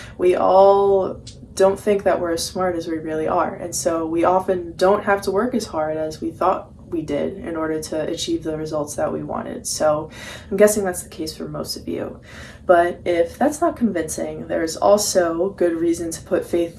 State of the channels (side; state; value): both; identical; correlation 1.00